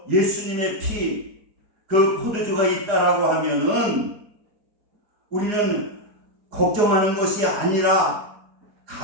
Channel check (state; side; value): late; left; 4.9 ms